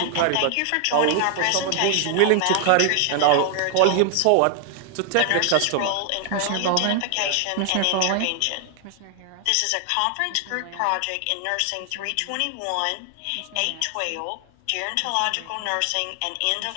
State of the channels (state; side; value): different; both; correlation 0.00